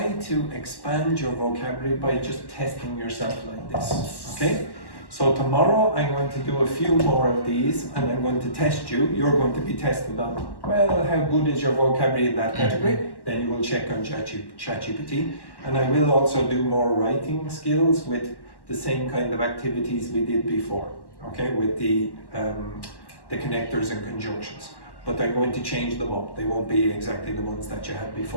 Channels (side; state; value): right; late; 1.1 ms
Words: to expand your vocabulary by just testing yourself like this. Okay? So tomorrow I'm going to do a few more of these and I'm going to test you. You're going to be tested on, well, how good is your vocabulary in that category? Then you will check on ChatGPT. And I will also do more writing skills with the same kind of activities we did before. Okay, with the connectors and conjunctions. But I'm going to change them up. They won't be exactly the ones that you had